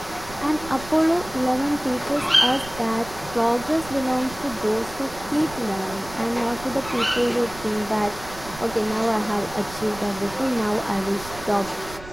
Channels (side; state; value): right; noise; rumble, 16 dB below the sound